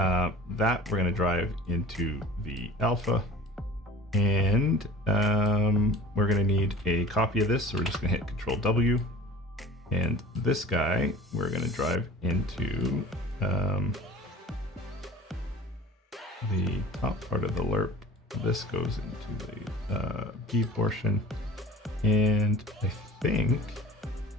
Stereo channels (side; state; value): both; normal; correlation 0.42